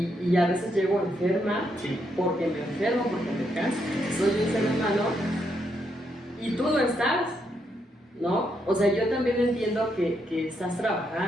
a veces llego enferma, sí. Porque me enfermo, porque me canso, soy un ser humano y tú no estás, ¿no? O sea, yo también entiendo que estás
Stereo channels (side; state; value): both; normal; correlation 0.78